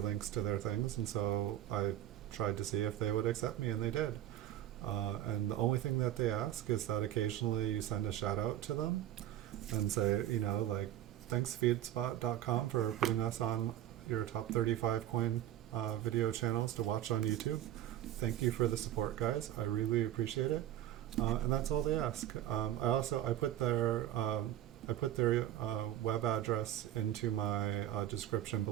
to their things, and so I tried to see if they would accept me, and they did. And the only thing that they ask is that occasionally you send a shout out to them and say, you know, like, thanks feedspot.com for putting us on your top 35 coin video channels to watch on YouTube. Thank you for the support, guys. I really appreciate it. And that's all they ask. I put their web address into my description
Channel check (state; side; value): quieter; left; 12.4 dB